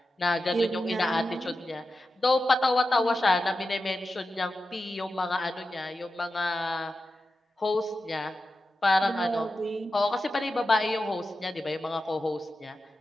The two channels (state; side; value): normal; both; correlation 0.92